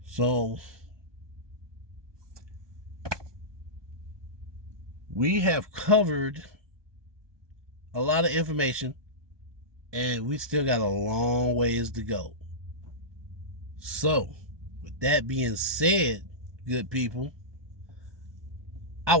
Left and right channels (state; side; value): late; left; 1.2 ms